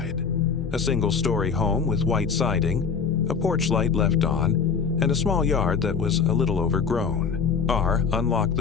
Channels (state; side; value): quieter; right; 5.9 dB